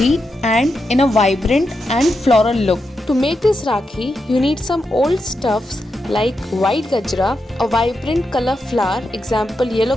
and in a vibrant and floral look. To make this Rakhi, you need some old stuffs like white gajra, a vibrant color flower, example yellow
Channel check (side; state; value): both; normal; correlation 0.86